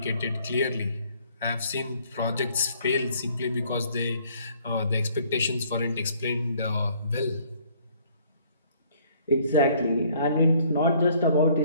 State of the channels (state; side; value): inverted; both; correlation -0.61